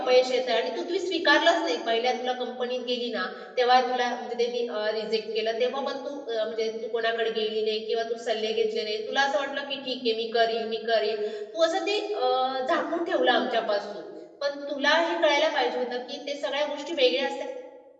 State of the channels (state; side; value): identical; both; correlation 1.00